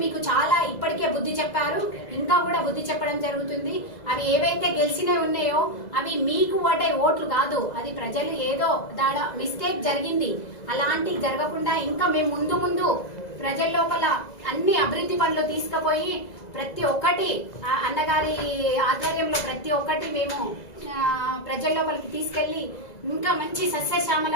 మీకు చాలా ఇప్పటికే బుద్ధి చెప్పారు, ఇంకా కూడా బుద్ధి చెప్పడం జరుగుతుంది. అవి ఏవైతే గెలిచినవి ఉన్నాయో అవి మీకు ఓట్లు కాదు. అది ప్రజలు ఏదో మిస్టేక్ జరిగింది. అలాంటివి జరగకుండా ఇంకా మేము ముందు ప్రజల లోపల అన్ని అభివృద్ధి పనులు తీసుకుపోయి ప్రతి ఒక్కటి అన్నగారి ఆధ్వర్యంలో ప్రతి ఒక్కటి మేము ప్రజల లోపలికి తీసుకెళ్లి ఇంకా మంచి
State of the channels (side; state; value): right; late; 2.0 ms